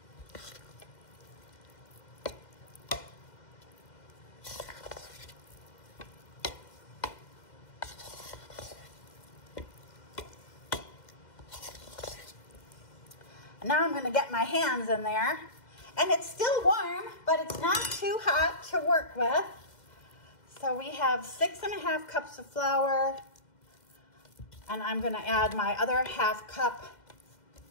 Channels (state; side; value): late; right; 2.1 ms